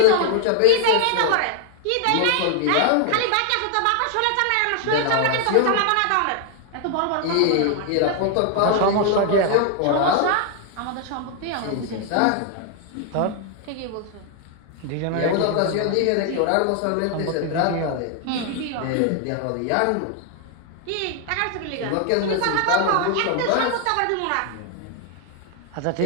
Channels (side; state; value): both; different; correlation 0.00